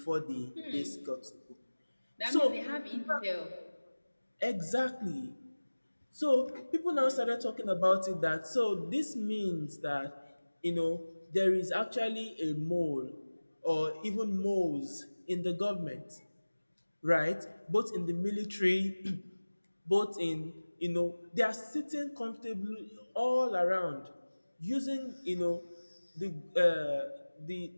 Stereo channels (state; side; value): inverted; both; correlation -1.00